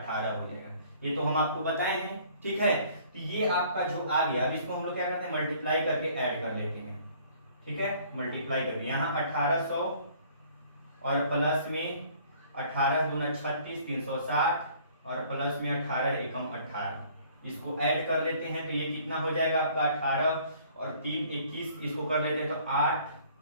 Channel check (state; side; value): inverted; both; correlation -0.56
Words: हो जाएगा। ये तो हम आपको बताए हैं, ठीक है। तो ये आपका जो आ गया, अब इसको हम लोग क्या करते हैं, मल्टीप्लाई करके ऐड कर लेते हैं, ठीक है, मल्टीप्लाई करके यहाँ 1800 और प्लस में 18 दूना 36, 360 और प्लस में 18 एकम 18, इसको ऐड कर देते हैं तो ये कितना हो जाएगा आपका 18 और 3 21, इसको कर लेते हैं तो 8,